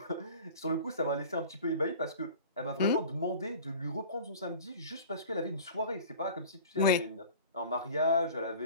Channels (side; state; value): both; inverted; correlation -0.42